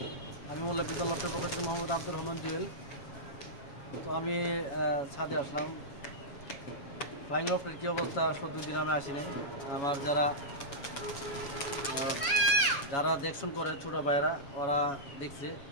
আমি মোল্লা বিদ্যাল লফটের পক্ষ থেকে মোহাম্মদ আব্দুর রহমান জুয়েল। তো আমি ছাদে আসলাম। ফ্লাইং লফটের কী অবস্থা, আসলে 2 দিন আমি আসি নাই। আমার যারা দেখশন করে ছোটো ভাইয়েরা, ওরা দেখছে।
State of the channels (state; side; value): late; right; 7.2 ms